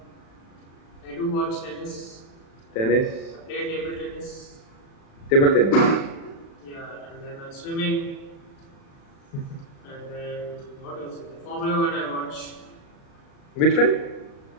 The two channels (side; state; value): right; late; 36 ms